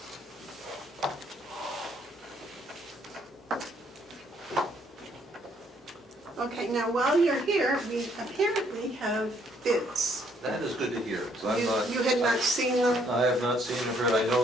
Okay, now while you're here, we apparently have bids. That is good to hear, 'cause You had not seen them? I have not seen or heard, I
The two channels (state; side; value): normal; both; correlation 0.67